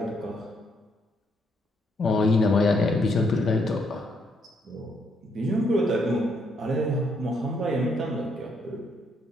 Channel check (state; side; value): normal; both; correlation 0.73